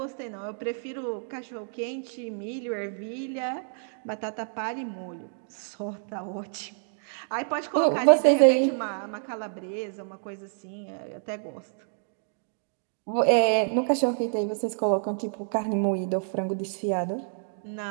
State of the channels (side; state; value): left; silent; digital silence